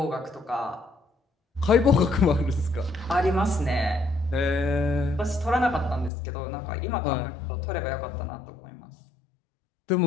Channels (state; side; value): drops out; right; at 6.1 s